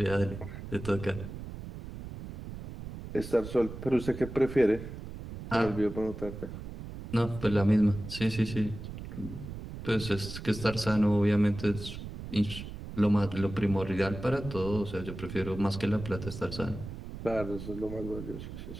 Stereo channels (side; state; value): right; noise; rumble, 10 dB below the sound